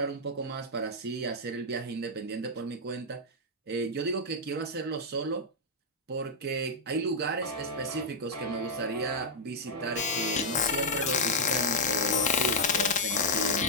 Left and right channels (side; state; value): both; normal; correlation -0.05